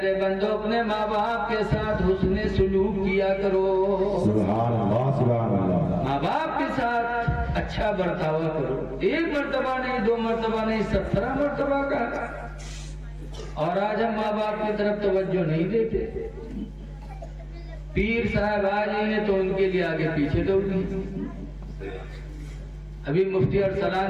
بندو اپنے ماں باپ کے ساتھ حسن سلوک کیا کرو۔ سبحان اللہ سبحان اللہ۔ ماں باپ کے ساتھ اچھا برتاوا کرو۔ 1 مرتبہ نہیں، 2 مرتبہ نہیں، 17 مرتبہ کہا۔ اور آج ہم ماں باپ کی طرف توجہ نہیں دیتے۔ پیر صاحب آ جائیں گے تو ان کے لیے آگے پیچھے دوڑ گئی۔ ابھی مفتی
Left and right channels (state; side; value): identical; both; correlation 1.00